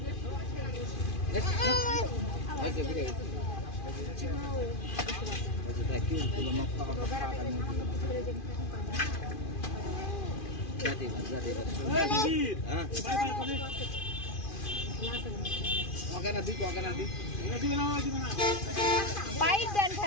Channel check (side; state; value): right; late; 2.5 ms